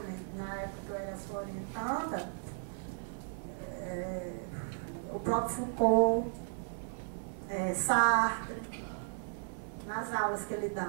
na época que eu era sua orientanda, o próprio Foucault, Sartre, nas aulas que ele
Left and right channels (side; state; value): left; silent; 54 dB below the other